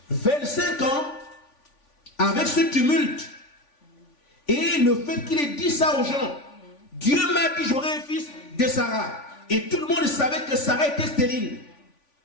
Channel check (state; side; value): late; right; 3.5 ms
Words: 25 ans, avec ce tumulte, et le fait qu'il ait dit ça aux gens, Dieu m'a dit j'aurai un fils de Sarah. Et tout le monde savait que Sarah était stérile.